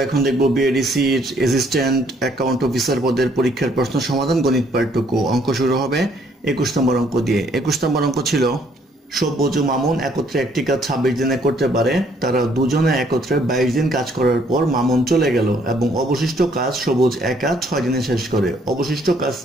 এখন দেখব বিএডিসির অ্যাসিস্ট্যান্ট অ্যাকাউন্ট অফিসার পদের পরীক্ষার প্রশ্ন সমাধান, গণিত পার্ট 2। অঙ্ক শুরু হবে 21 নম্বর অঙ্ক দিয়ে। 21 নম্বর অঙ্ক ছিল, সব্যজ ও মামুন একত্রে একটি কাজ 26 দিনে করতে পারে। তারা দুজনে একত্রে 22 দিন কাজ করার পর মামুন চলে গেল এবং অবশিষ্ট কাজ সবুজ একা 6 দিনে শেষ করে। অবশিষ্ট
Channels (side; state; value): both; normal; correlation 0.66